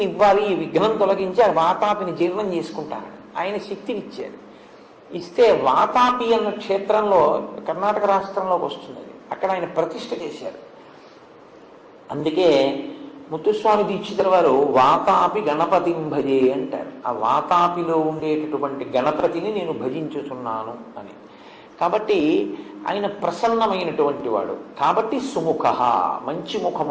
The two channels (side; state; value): both; identical; correlation 1.00